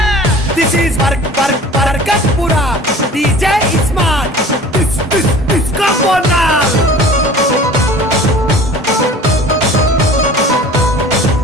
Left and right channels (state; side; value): normal; both; correlation 0.44